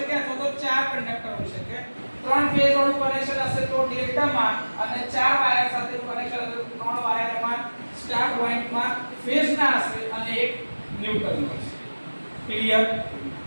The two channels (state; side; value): inverted; both; correlation -1.00